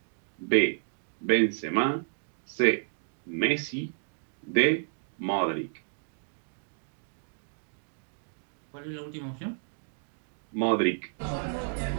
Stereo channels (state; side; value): silent; left; digital silence